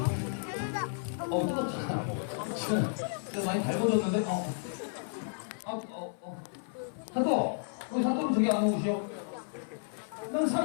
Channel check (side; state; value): right; silent; 56 dB below the other